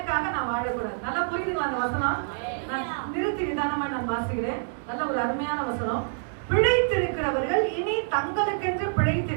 நான் வாழக்கூடாது. நல்லா புரியுதுங்களா அந்த வசனம்? நான் நிறுத்தி நிதானமா நான் வாசிக்கிறேன். நல்ல ஒரு அருமையான வசனம். பிழைத்திருக்கிறவர்கள் இனி தங்களுக்கென்று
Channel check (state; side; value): silent; left; digital silence